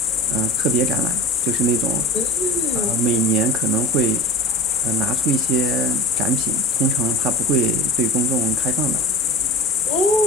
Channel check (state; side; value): normal; both; correlation 0.34